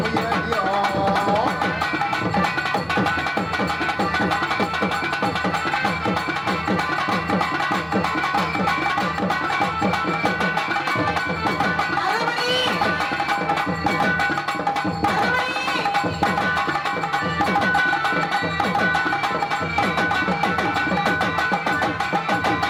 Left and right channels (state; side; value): identical; both; correlation 1.00